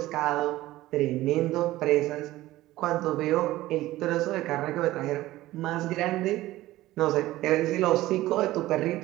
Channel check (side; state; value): left; quieter; 16.5 dB